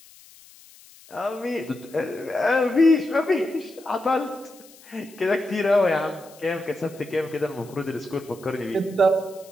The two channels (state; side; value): noise; left; hiss, 23 dB below the sound